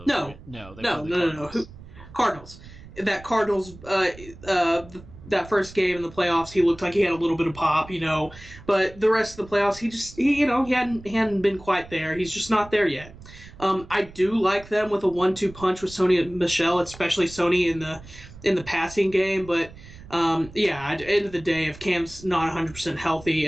Cardinals. That Cardinals, that first game in the playoffs, he looked like he had a little bit of pop, But the rest of the playoffs, he hadn't been quite there. He's just not there yet. I do like them with a 1-2 punch with Sony and Michel, especially Sony in the passing game, but. At the end of the day, if Cam's not 100% healthy,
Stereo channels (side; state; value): right; noise; rumble, 19 dB below the sound